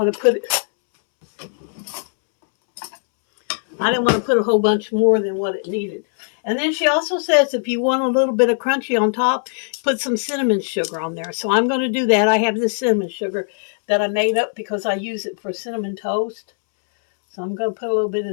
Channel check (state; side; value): silent; right; 66 dB below the other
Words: to put it. I didn't want to put a whole bunch more than what it needed. And then she also says if you want a little bit of crunchy on top, put some cinnamon sugar on there. So I'm going to do that. I have this cinnamon sugar that I made up because I use it for cinnamon toast. So I'm going to put a little bit